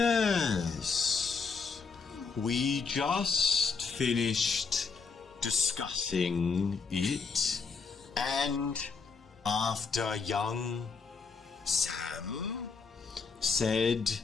We just finished discussing it, and after young Sam said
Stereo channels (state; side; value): quieter; right; 5.0 dB